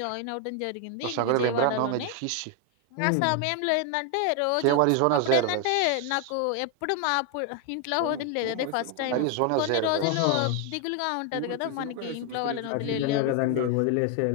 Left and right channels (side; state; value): both; different; correlation 0.01